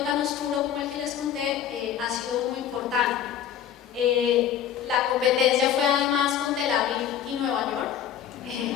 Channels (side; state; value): right; quieter; 9.5 dB